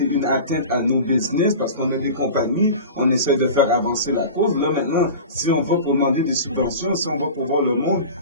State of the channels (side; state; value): both; inverted; correlation -0.34